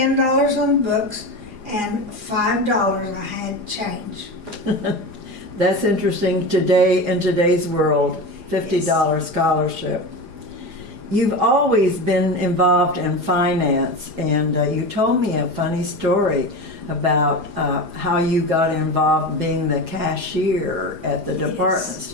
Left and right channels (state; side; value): late; left; 4.9 ms